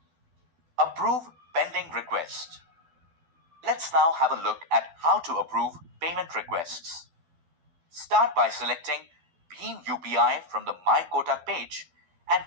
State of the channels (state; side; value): late; left; 12 ms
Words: Approve pending request. Let's now have a look at how to approve payment requests. Start by selecting Bhim UPI from the My Kotak page and